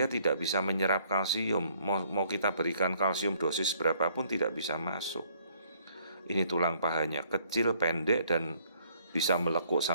tidak bisa menyerap kalsium. Mau kita berikan kalsium dosis berapapun tidak bisa masuk. Ini tulang pahanya kecil, pendek, dan bisa melekuk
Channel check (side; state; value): both; inverted; correlation -0.64